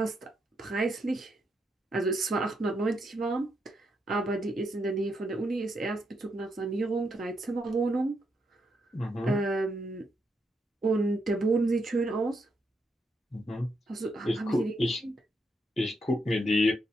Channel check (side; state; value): both; normal; correlation 0.80